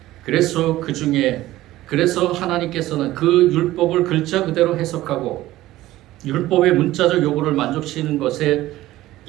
그래서 하나님께서는 그 율법을 글자 그대로 해석하고 율법의 문자적 요구를 만족시키는 것에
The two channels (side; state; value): left; quieter; 16.0 dB